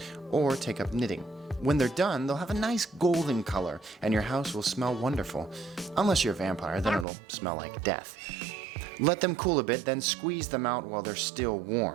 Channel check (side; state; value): left; drops out; at 7.1 s